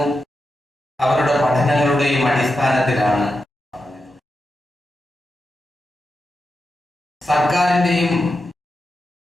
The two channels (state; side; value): normal; both; correlation 0.88